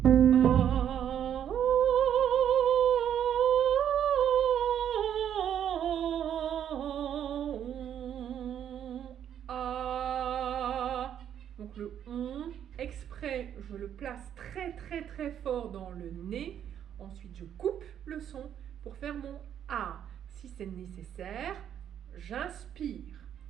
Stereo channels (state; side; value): quieter; left; 9.6 dB